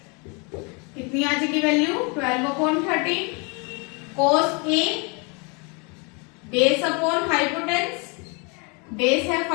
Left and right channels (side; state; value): right; quieter; 32.1 dB